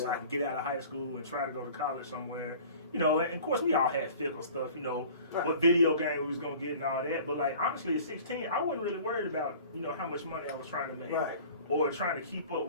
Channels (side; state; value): both; inverted; correlation -0.45